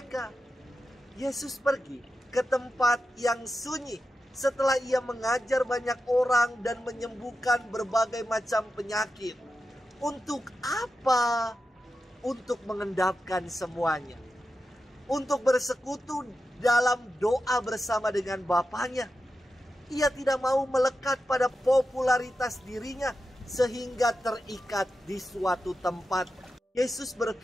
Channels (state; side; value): normal; both; correlation 0.90